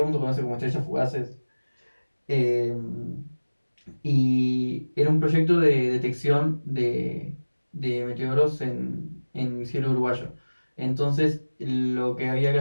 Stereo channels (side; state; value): both; inverted; correlation -1.00